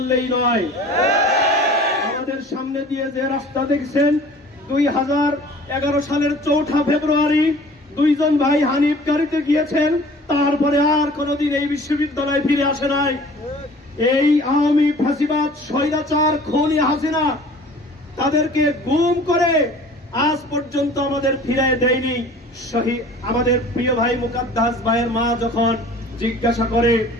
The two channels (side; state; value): both; normal; correlation 0.47